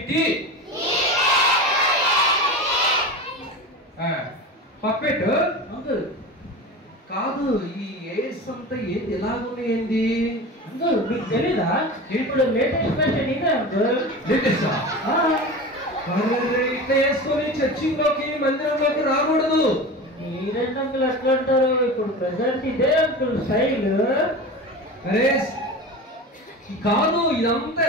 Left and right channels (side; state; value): both; normal; correlation 0.30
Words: పప్పెట్ కాదు. ఈ ఏస్ అంతా ఏంటి ఎలాగున్నాయండి? అంకుల్ మీకు తెలీదా? ఇప్పుడు లేటెస్ట్ ఫ్యాషన్ ఇదే అంకుల్. లేటెస్టా? ఇట్లా వేసుకొని చర్చిలోకి మందిరంలోకి రాకూడదు. మీరేంటి అంకుల్ అట్లా అంటారు? ఇప్పుడు ప్రెసెంట్ ఇదే అంకుల్ స్టైల్. అరే కాదు, ఇదంతా